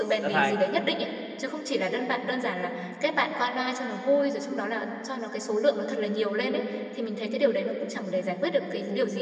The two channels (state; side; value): identical; both; correlation 1.00